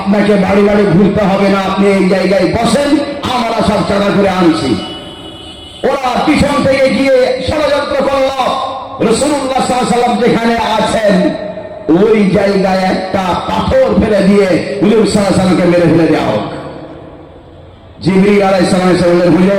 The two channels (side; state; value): both; identical; correlation 1.00